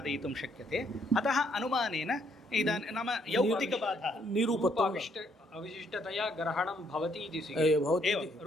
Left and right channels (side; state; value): both; normal; correlation 0.70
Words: शक्यते. अतः अनुमानेन इदानीं नाम यौक्तिकबाधः निरूपत्वं अविशिष्टतया ग्रहणं भवति इति भवति. एवं